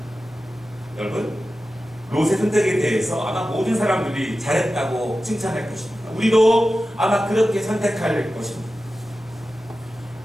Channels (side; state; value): both; normal; correlation 0.93